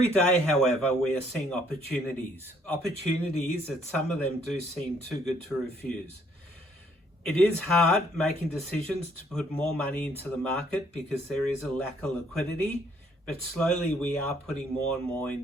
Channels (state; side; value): normal; both; correlation 0.66